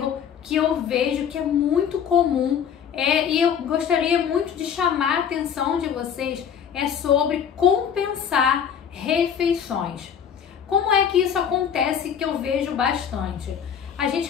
que eu vejo que é muito comum e eu gostaria muito de chamar a atenção de vocês é sobre compensar refeições. Como é que isso acontece que eu vejo bastante? A gente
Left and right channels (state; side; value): quieter; right; 8.1 dB